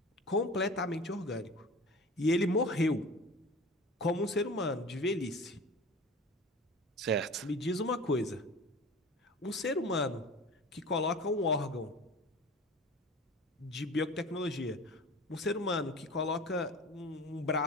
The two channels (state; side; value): normal; both; correlation 0.37